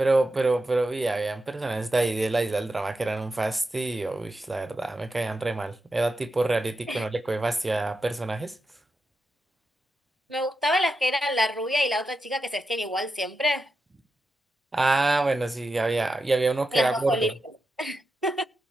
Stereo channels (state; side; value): normal; both; correlation 0.88